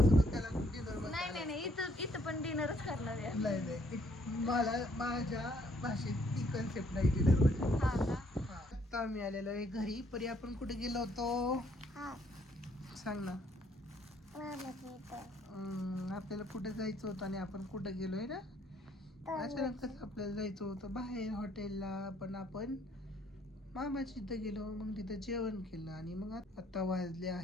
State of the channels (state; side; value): normal; both; correlation 0.67